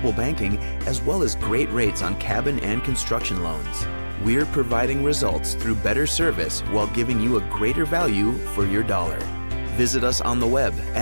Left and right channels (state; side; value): inverted; both; correlation -1.00